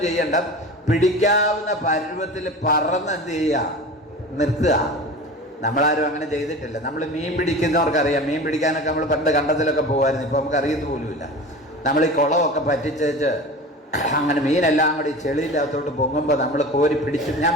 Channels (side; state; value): both; normal; correlation 0.34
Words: ചെയ്യണ്ട, പിടിക്കാവുന്ന പരുവത്തിൽ പറന്ന് എന്ത് ചെയ്യുക? നിർത്തുക. നമ്മളാരും അങ്ങനെ ചെയ്തിട്ടില്ല. നമ്മൾ മീൻ പിടിക്കുന്നവർക്കറിയാം. മീൻ പിടിക്കാനൊക്കെ നമ്മൾ പണ്ട് കണ്ടത്തിലൊക്കെ പോകുമായിരുന്നു. ഇപ്പോൾ നമുക്ക് അറിയത്ത് പോലുമില്ല. നമ്മൾ ഈ കുളമൊക്കെ പറ്റിച്ചേച്ച് അങ്ങനെ മീനെല്ലാം കൂടി ചെളിയില്ലാത്തോട്ട് പൊങ്ങുമ്പോൾ നമ്മൾ കോരി ഞാൻ